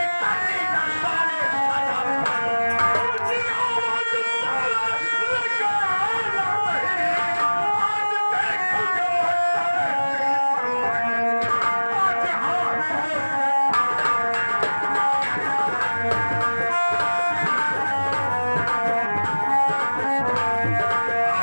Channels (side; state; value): both; inverted; correlation -1.00